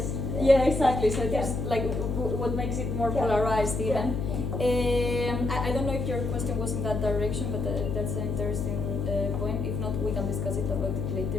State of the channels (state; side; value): noise; left; hum, 2 dB below the sound